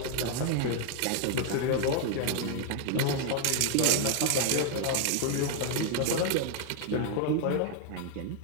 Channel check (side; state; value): both; different; correlation 0.00